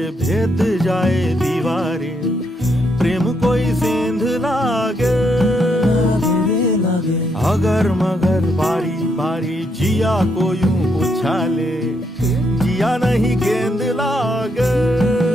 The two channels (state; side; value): normal; both; correlation 0.76